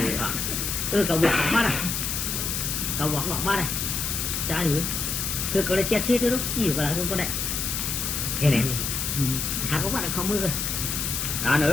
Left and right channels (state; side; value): noise; left; hiss, 1 dB below the sound